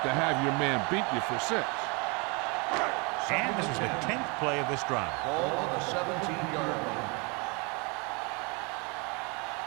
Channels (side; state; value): left; quieter; 30.8 dB